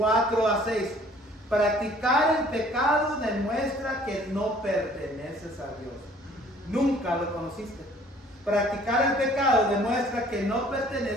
a 6. Practicar el pecado demuestra que no perteneces a Dios. Nunca lo conociste. Practicar el pecado demuestra que no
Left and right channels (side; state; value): both; normal; correlation 0.55